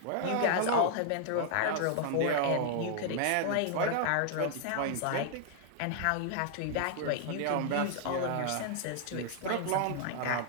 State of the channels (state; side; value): different; both; correlation 0.00